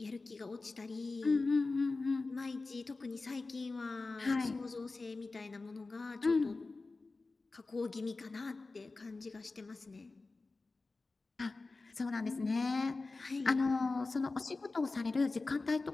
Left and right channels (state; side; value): quieter; right; 3.6 dB